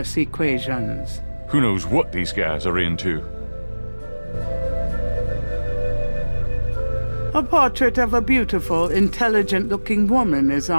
equations. Who knows what these guys are into? A portrait of a beautiful, intelligent-looking woman is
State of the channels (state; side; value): inverted; both; correlation -1.00